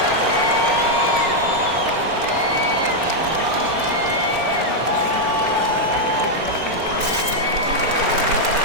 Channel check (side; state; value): left; late; 4.4 ms